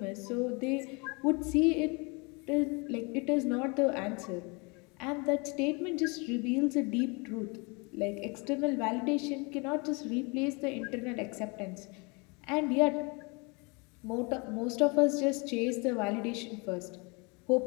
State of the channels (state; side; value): quieter; right; 30.2 dB